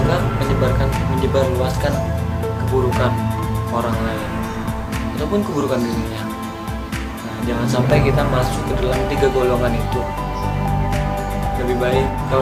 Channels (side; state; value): both; identical; correlation 1.00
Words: menyebarluaskan keburukan orang lain ataupun keburukan dirinya. Nah, jangan sampai kita masuk ke dalam 3 golongan itu. Lebih baik